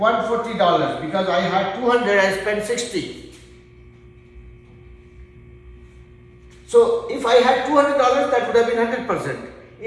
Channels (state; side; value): identical; both; correlation 1.00